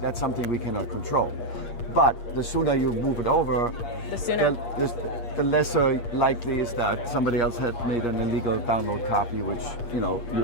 that's something we cannot control. But the sooner you move it over, the lesser likely is that somebody else had made an illegal download copy, which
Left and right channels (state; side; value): late; right; 8.5 ms